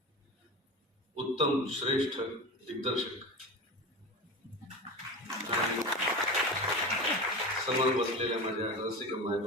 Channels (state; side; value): normal; both; correlation 0.27